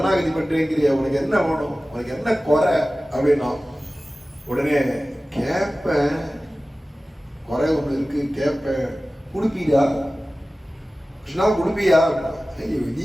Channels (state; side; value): normal; both; correlation 0.96